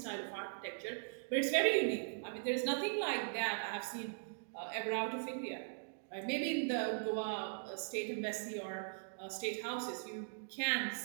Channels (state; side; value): silent; left; digital silence